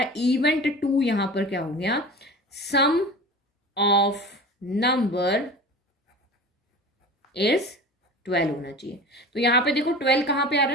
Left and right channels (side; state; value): both; normal; correlation 0.36